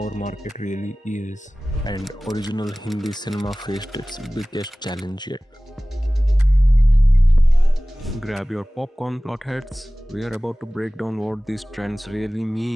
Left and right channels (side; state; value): both; normal; correlation 0.98